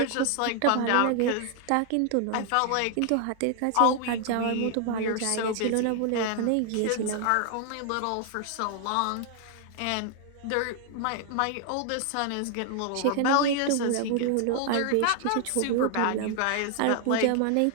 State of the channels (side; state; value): both; different; correlation 0.00